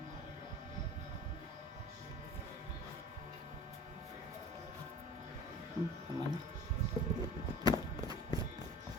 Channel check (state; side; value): normal; both; correlation 0.40